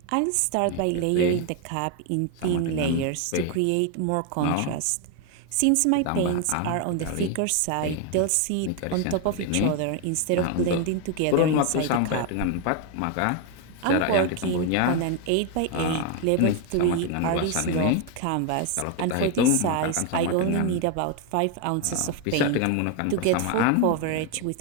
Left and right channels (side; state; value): both; different; correlation 0.01